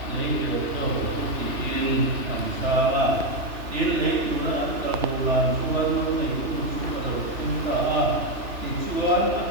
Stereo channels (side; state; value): left; late; 3.0 ms